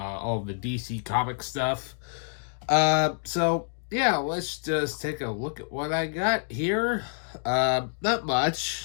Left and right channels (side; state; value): right; silent; digital silence